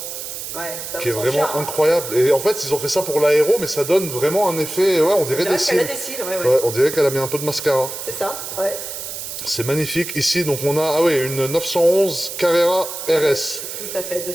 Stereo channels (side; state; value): right; noise; hiss, 8 dB below the sound